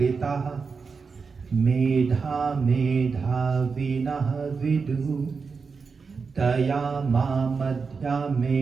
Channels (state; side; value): quieter; left; 5.0 dB